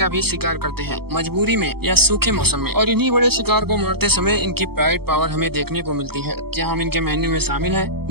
भी शिकार करते हैं, मजबूरी में या सूखे मौसम में। और इन्हीं बड़े शिकार को मारते समय इनकी प्राइड पावर हमें देखने को मिलती है। क्या हम इनके मेन्यू में शामिल है?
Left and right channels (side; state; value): left; late; 0.96 ms